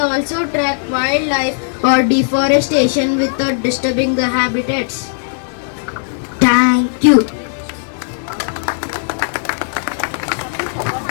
track wildlife or deforestation without disturbing the habitats. Thank you.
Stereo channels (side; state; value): right; silent; 68 dB below the other